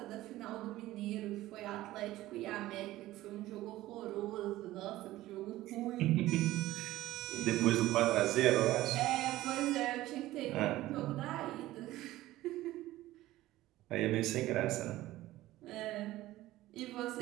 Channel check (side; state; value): left; quieter; 16.2 dB